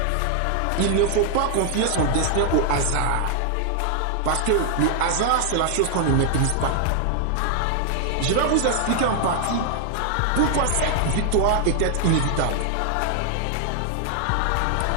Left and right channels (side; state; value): both; different; correlation 0.00